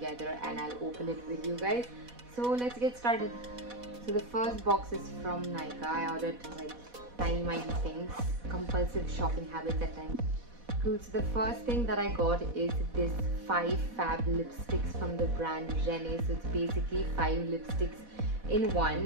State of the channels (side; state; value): left; late; 4.1 ms